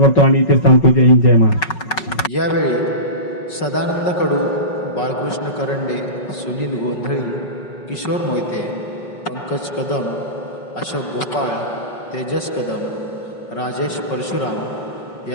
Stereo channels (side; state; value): right; late; 5.4 ms